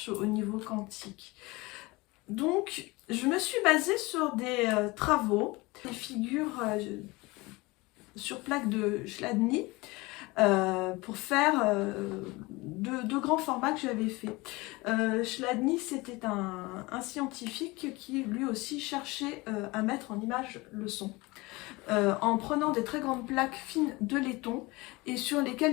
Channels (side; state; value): right; quieter; 23.0 dB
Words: au niveau quantique. Donc, je me suis basée sur des travaux, des figures sur plaque de Chladni, pour faire de grands formats que j'avais fait. Chladni, c'était un scientifique qui lui aussi cherchait à mettre en image le son, en prenant des très grandes plaques fines de laiton et sur